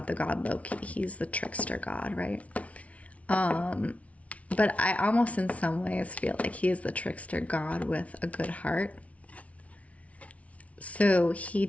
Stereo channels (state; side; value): late; right; 0.065 ms